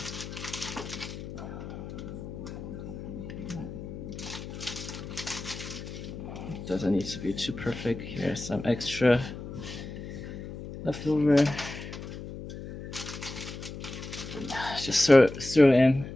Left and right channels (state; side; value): noise; left; hum, 10 dB below the sound